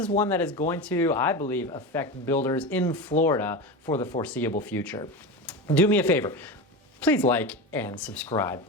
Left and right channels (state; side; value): normal; both; correlation 0.23